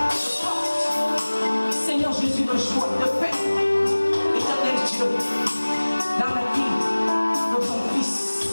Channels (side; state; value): both; inverted; correlation -1.00